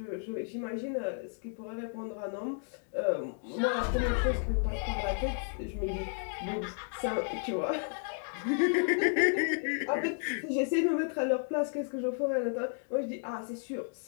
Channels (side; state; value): right; silent; 55 dB below the other